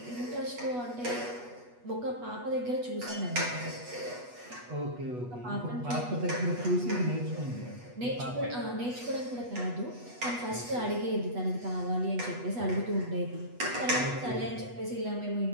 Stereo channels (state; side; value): late; left; 8.2 ms